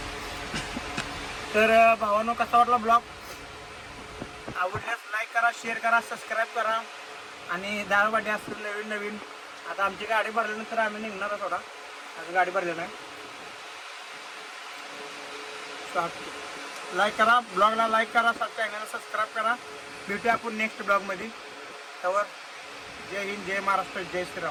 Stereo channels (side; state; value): both; identical; correlation 1.00